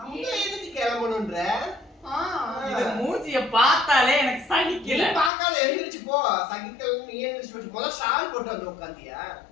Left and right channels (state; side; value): drops out; right; at 5.3 s